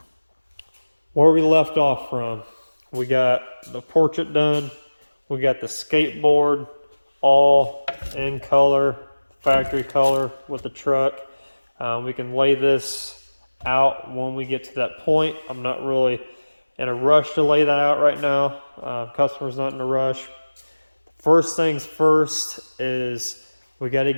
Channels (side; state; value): both; inverted; correlation -1.00